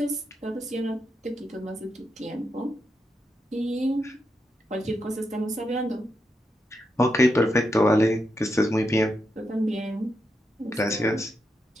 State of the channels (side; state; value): both; normal; correlation 0.84